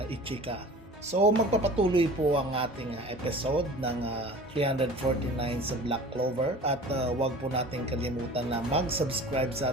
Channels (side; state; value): both; normal; correlation 0.41